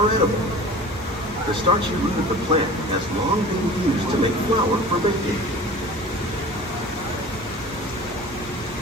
edible. The starchy root of the plant has long been used to make flour for baking.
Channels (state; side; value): normal; both; correlation 0.40